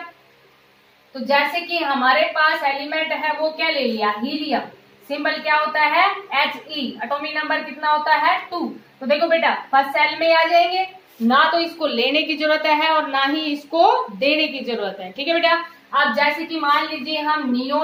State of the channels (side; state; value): both; identical; correlation 1.00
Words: तो जैसे कि हमारे पास एलिमेंट है वो क्या ले लिया, हीलियम। सिंबल क्या होता है, He। एटॉमिक नंबर कितना होता है, 2। तो देखो बेटा फर्स्ट सेल में आ जाएंगे, ना तो इसको लेने की जरूरत है और ना ही इसको देने की जरूरत है। ठीक है बेटा। अब जैसे कि मान लीजिए हम